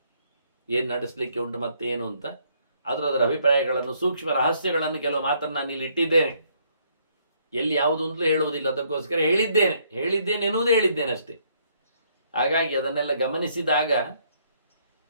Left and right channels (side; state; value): both; inverted; correlation -0.68